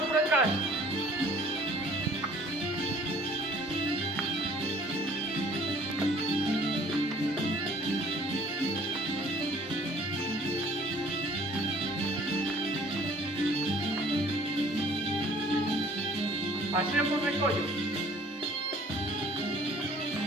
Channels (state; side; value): normal; both; correlation 0.55